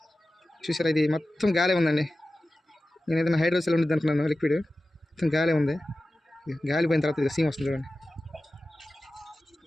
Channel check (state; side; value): normal; both; correlation 0.94